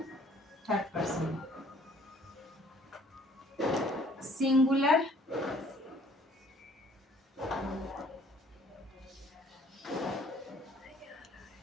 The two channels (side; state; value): both; normal; correlation 0.57